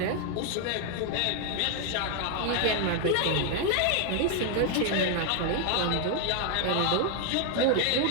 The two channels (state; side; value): different; both; correlation 0.00